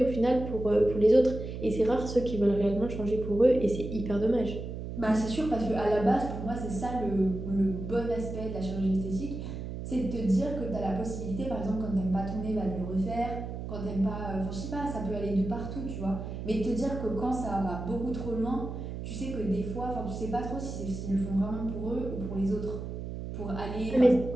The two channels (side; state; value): right; noise; hum, 7 dB below the sound